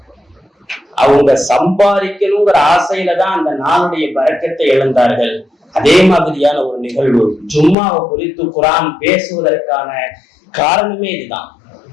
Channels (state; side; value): drops out; right; at 7.8 s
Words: அவங்க சம்பாதிக்கணுங்கிற ஆசையில தான் அந்த நாளுடைய பரக்கத்தை இழந்தார்கள். அதே மாதிரியான ஒரு நிகழ்வு ஜும்மாவை குறித்து குர்ஆன் பேசுவதற்கான காரணமே இதுதான்.